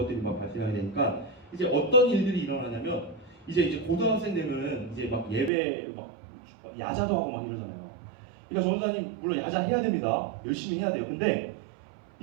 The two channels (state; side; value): drops out; left; at 5.5 s